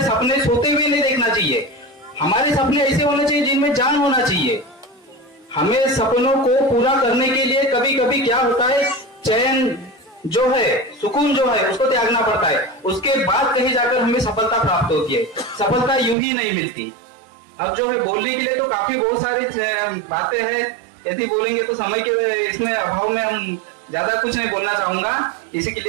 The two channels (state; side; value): drops out; left; at 16.2 s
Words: सपने सोते हुए नहीं देखना चाहिए, हमारे सपने ऐसे होने चाहिए जिनमें जान होना चाहिए। हमें सपनों को पूरा करने के लिए कभी कभी क्या होता है, चैन जो है, सुकून जो है, उसको त्यागना पड़ता है, उसके बाद कहीं जाकर हमें सफलता प्राप्त होती है। सफलता यूं ही नहीं मिलती। अब जो है बोलने के लिए तो काफी बहुत सारी बातें हैं, यदि बोलेंगे तो समय के इसमें अभाव में हम ज्यादा कुछ नहीं बोलना चाहूंगा। इसी के